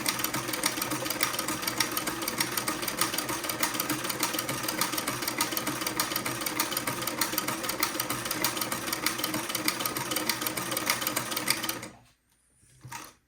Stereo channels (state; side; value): identical; both; correlation 1.00